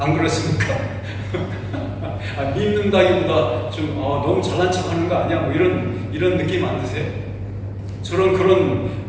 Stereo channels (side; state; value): both; identical; correlation 1.00